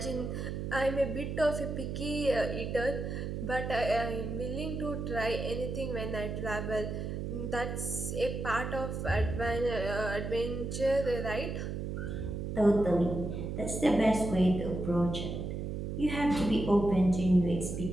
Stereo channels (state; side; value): noise; right; hum, 4 dB below the sound